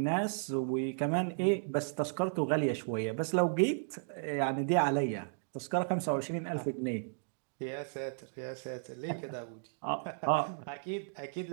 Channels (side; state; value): left; silent; digital silence